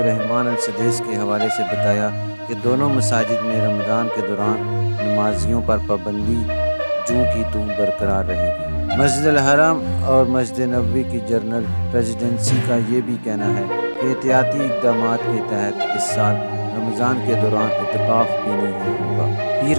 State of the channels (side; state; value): both; inverted; correlation -1.00